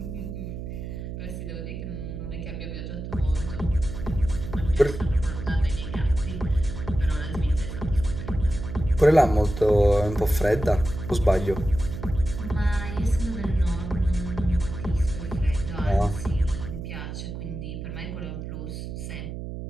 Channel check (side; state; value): right; noise; hum, 7 dB below the sound